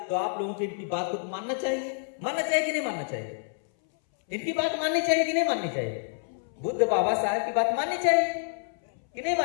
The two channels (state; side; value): silent; right; 59 dB below the other